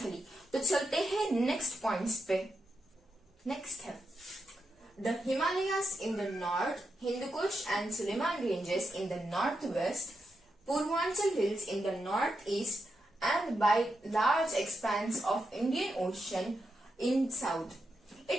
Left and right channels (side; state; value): both; normal; correlation 0.86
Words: तो चलते हैं नेक्स्ट पॉइंट्स पे। नेक्स्ट है the Himalayas in the north, Hindu Kush and Suleiman ranges in the northwest, Purvanchal hills in the northeast, and by large expanse of Indian Ocean in south.